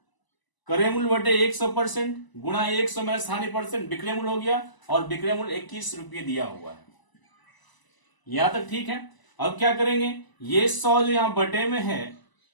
क्रय मूल्य बटे 100% गुणा 100 माइनस हानि परसेंट विक्रय मूल्य हो गया, और विक्रय मूल्य 21 रुपये दिया हुआ है। यहां तक ठीक है। अब क्या करेंगे? ये 100 जो यहाँ बटे में है,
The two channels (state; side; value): late; right; 1.0 ms